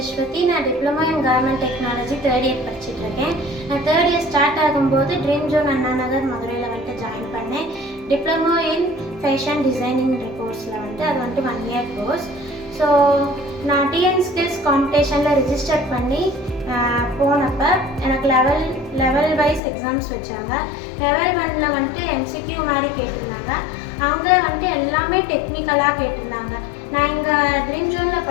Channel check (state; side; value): drops out; right; at 19.6 s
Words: நான் diploma in garment technology third year படிச்சுட்டு இருக்கேன். நான் தேர்ட் இயர் ஸ்டார்ட் ஆகும்போது ட்ரீம் ஜோன் அண்ணா நகர் மதுரையில் வந்துட்டு ஜாயின் பண்ணேன். டிப்ளமோ இன் ஃபேஷன் டிசைனிங் கோர்ஸில் வந்துட்டு அது வந்துட்டு 1 year கோர்ஸ். ஸோ நான் டிஎன் ஸ்கில்ஸ் காம்படிஷனில் ரிஜிஸ்டர் பண்ணி போனப்போ எனக்கு லெவல் வைஸ் எக்ஸாம்ஸ் வச்சாங்க. லெவல் 1ல் வந்துட்டு எம்சிக்யூ மாதிரி கேட்டிருந்தாங்க. அங்கே வந்துட்டு எல்லாமே டெக்னிக்கலாக கேட்டிருந்தாங்க. நான் இங்கே ட்ரீம் ஜோனில்